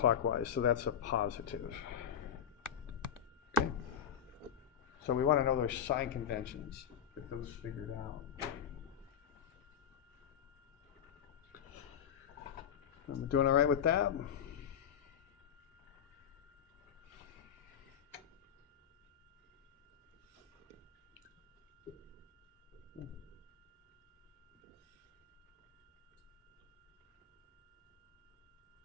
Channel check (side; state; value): right; quieter; 8.7 dB